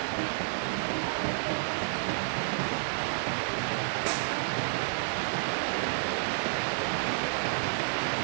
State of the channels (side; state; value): left; silent; digital silence